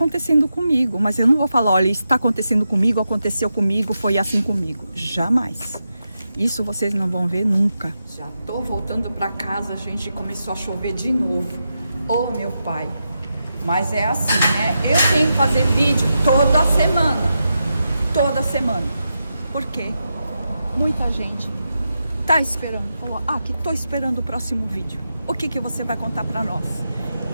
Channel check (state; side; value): inverted; both; correlation -0.87